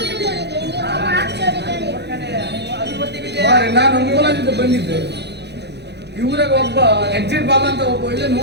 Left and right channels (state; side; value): late; left; 0.49 ms